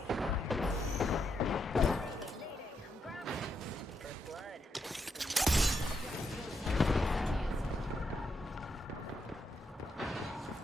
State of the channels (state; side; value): normal; both; correlation 0.80